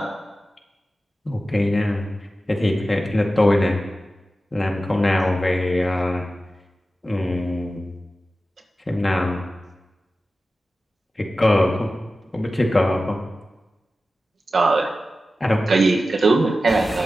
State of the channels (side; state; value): both; normal; correlation 0.94